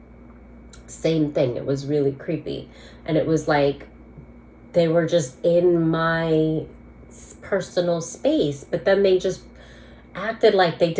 same thing. It was really creepy. And it was like they were just in my personal space, but then they just acted like they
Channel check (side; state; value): both; identical; correlation 1.00